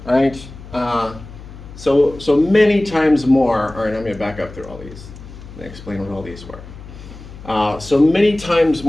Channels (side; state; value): left; noise; hum, 16 dB below the sound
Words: right? So many times more. All right, I'm going to back up through all these and explain what all these were. So many times